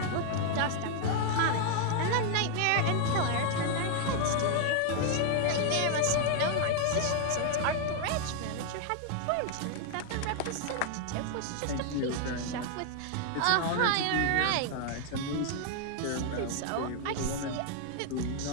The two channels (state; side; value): different; both; correlation 0.00